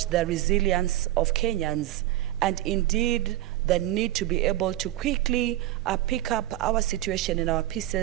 the resilience of Kenyans and indeed the need to be able to quickly pick up our situation in our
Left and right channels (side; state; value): left; quieter; 14.9 dB